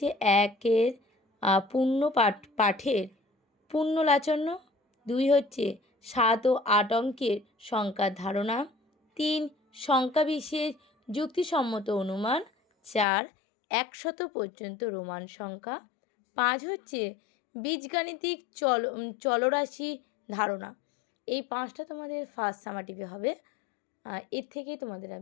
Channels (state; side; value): drops out; right; at 13.1 s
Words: একের পূর্ণ পাঠের পূর্ণলাচন্য, 2 হচ্ছে 7 ও 8 অঙ্কের সংখ্যার ধারণা, 3 সংখ্যা বিশেষ যুক্তিসম্মত অনুমান, 4 100 পর্যন্ত রোমান সংখ্যা, 5 হচ্ছে বীজগাণিতিক চলরাশি ধারণা। এই 5টা তোমাদের ফার্স্ট সামাটিভে হবে। এর থেকেই তোমাদের